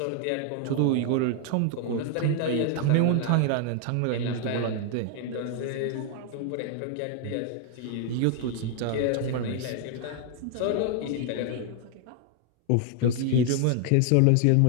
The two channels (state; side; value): different; both; correlation 0.00